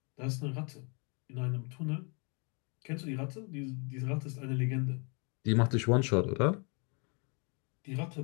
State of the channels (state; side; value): quieter; right; 34.9 dB